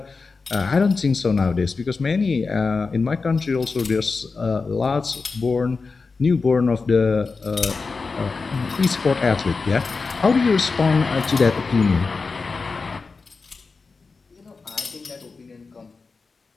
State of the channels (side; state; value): right; quieter; 4.4 dB